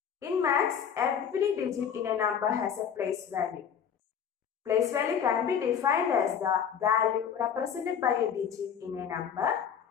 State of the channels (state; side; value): quieter; right; 7.8 dB